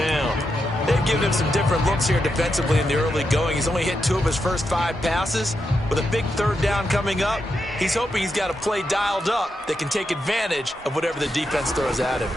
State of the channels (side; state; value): both; normal; correlation 0.85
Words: They've given him some different looks here defensively in the early going. He's only hit 2 of his first 5 passes. With a big 3rd down coming up, he's hoping he's got a play dialed up that can take advantage of whatever the defense throws at him.